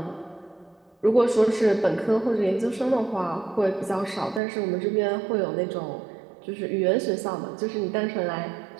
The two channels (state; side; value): drops out; left; at 4.4 s